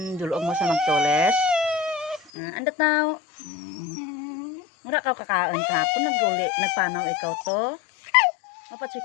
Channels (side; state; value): right; drops out; at 2.3 s